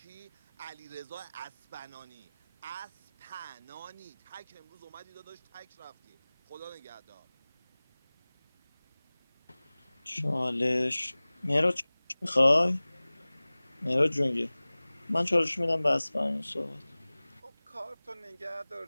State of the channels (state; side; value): inverted; both; correlation -0.99